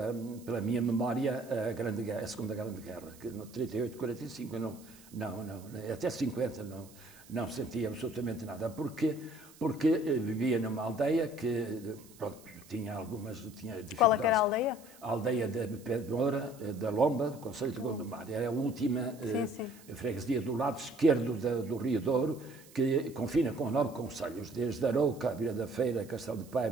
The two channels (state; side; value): noise; right; hiss, 23 dB below the sound